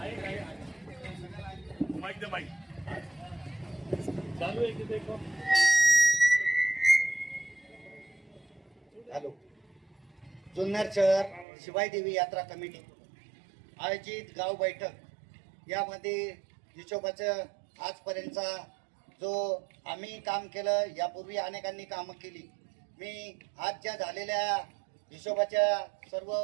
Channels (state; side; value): drops out; left; at 11.5 s